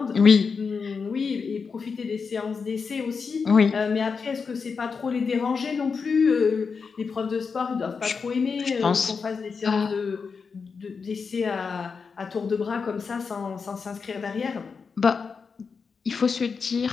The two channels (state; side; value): quieter; right; 5.4 dB